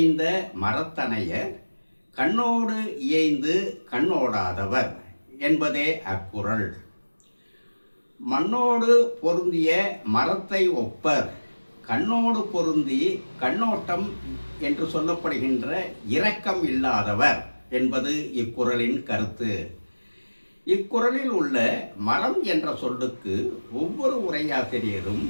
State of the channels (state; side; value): inverted; both; correlation -1.00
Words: மரத்தனையர் கண்ணோடு இயைந்து கண்ணோடாதவர் என்பதே அக்குறள். மண்ணோடு பொருந்திய மரத்தை ஒப்பர், கண்ணோடு பொருந்தி கண்ணோட்டம் என்று சொல்லப்படுகின்ற இரக்கம் இல்லாதவர் என்பது இக்குறளின் கருத்து. இக்குறளில் உள்ள மரம் என்ற சொல்லுக்கு ஒவ்வொரு உரையாசிரியரும்